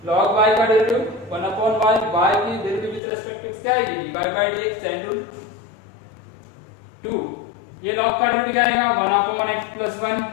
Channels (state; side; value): drops out; right; at 3.0 s